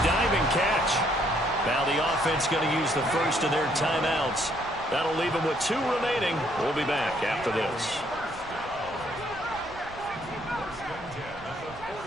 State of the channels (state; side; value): noise; right; rumble, 19 dB below the sound